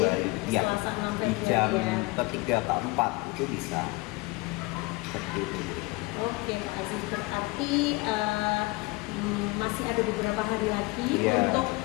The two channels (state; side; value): quieter; right; 24.1 dB